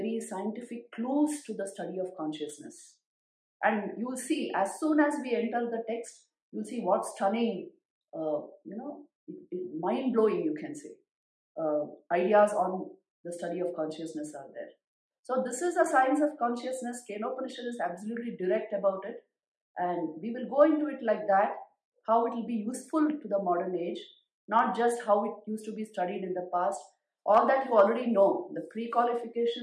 scientific clues to the study of consciousness. And you will see, as soon as we enter the text, you will see what stunning, mind-blowing, you can say, ideas on the study of consciousness are there. So this is the science of consciousness. Upanishad is absolutely direct about it. And we will go into it like that, how it will be useful to the modern age, not just how it used to be studied in the past. All that you already know. The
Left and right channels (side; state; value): both; identical; correlation 1.00